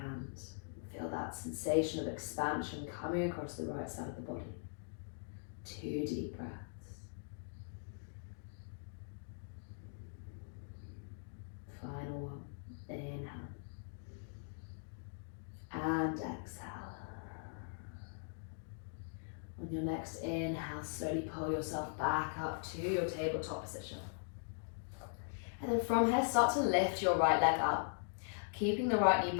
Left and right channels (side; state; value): right; silent; digital silence